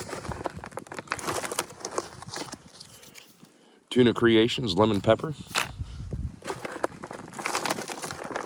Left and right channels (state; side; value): identical; both; correlation 1.00